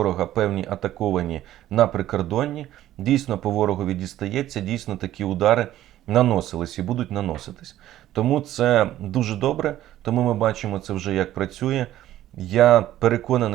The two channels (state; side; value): quieter; left; 13.4 dB